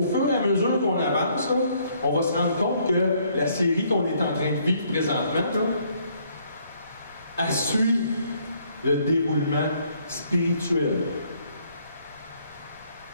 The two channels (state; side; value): inverted; both; correlation -0.67